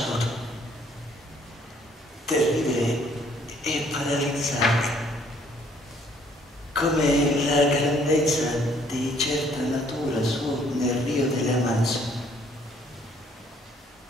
terribile e paralizzante, come la grandezza di certa natura su nel Rio delle Amazzoni.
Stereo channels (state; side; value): normal; both; correlation 0.63